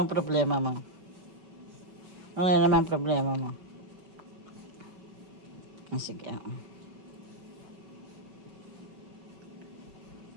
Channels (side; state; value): left; late; 5.2 ms